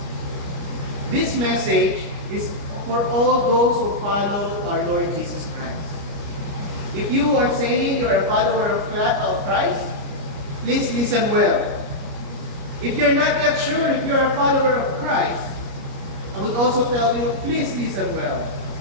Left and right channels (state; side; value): late; left; 29 ms